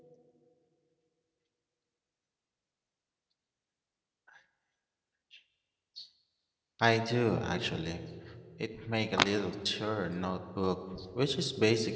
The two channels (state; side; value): identical; both; correlation 1.00